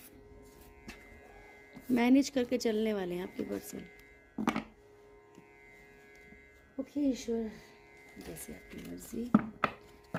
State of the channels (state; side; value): identical; both; correlation 1.00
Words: मैनेज करके चलने वाले हैं आपके पर्सन, ओके। ईश्वर जैसे आपकी मर्जी,